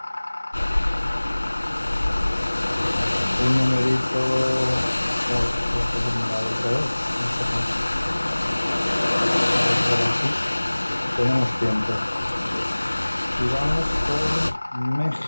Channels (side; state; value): both; inverted; correlation -1.00